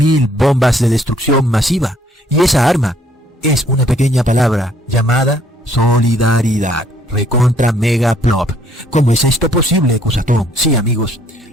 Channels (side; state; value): both; normal; correlation 0.64